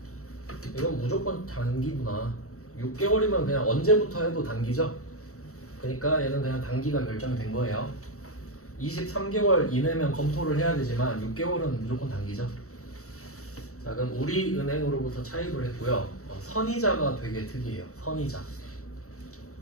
이건 무조건 단기구나. 6개월이면 그냥 언제부터 해도 단기죠? 그러니까 얘는 그냥 단기가 결정이 된 거예요. 23개월 이내면 검토를 해야 되지만 6개월은 무조건 단기죠. 자 그럼 우리 은행으로부터 차입을 했고요. 선이자가 되게 특이해요.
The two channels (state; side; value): late; right; 0.64 ms